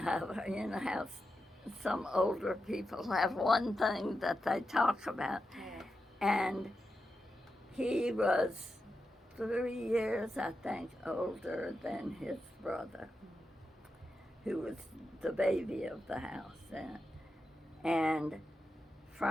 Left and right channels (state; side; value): normal; both; correlation 0.89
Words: some older people have one thing that they talk about. And he was 3 years, I think, older than his brother. who was the baby of the house then. And